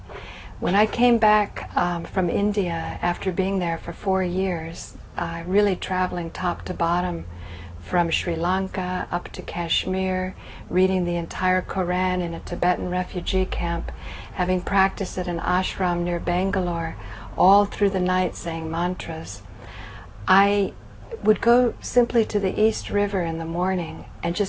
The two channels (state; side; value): identical; both; correlation 1.00